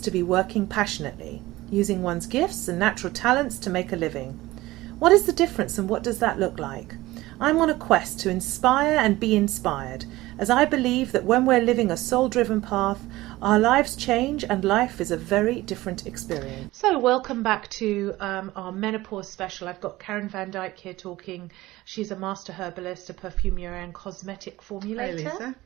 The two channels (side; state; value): left; quieter; 18.1 dB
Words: to be working passionately, using one's gifts and natural talents to make a living. What is the difference and what does that look like? I'm on a quest to inspire and be inspired, as I believe that when we're living a soul-driven path, our lives change and life is a very different experience. So welcome back to our menopause special. I've got Karen van Dyke here talking. She's a master herbalist, a perfumer and cosmetic formulator. Hi, Lisa.